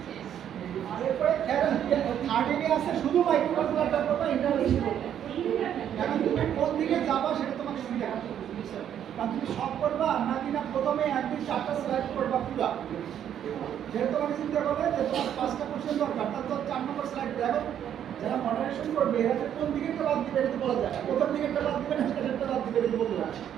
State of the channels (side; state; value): left; quieter; 9.8 dB